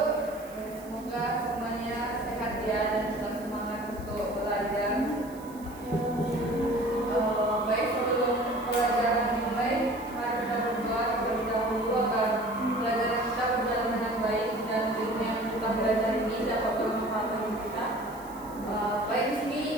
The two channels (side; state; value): right; noise; hiss, 22 dB below the sound